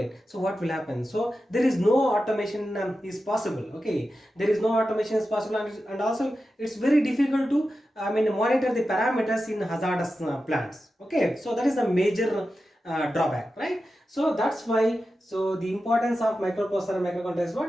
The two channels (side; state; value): both; normal; correlation 0.92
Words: so what will happen? So there is no automation is possible. Okay, there is no automation is possible, and also it's very difficult to monitor the parameters in hazardous plants. Okay, so that is a major drawback, right? So that's why, so the importance of microprocessor and microcontroller is